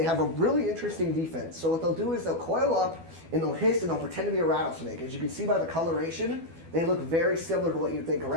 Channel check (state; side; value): late; left; 12 ms